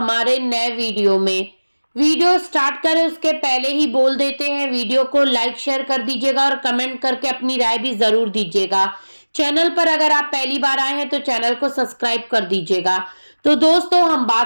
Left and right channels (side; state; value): both; inverted; correlation -1.00